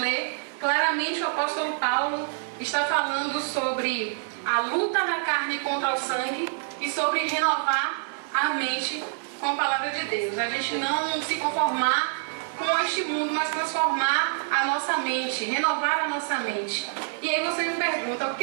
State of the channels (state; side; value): silent; left; 57 dB below the other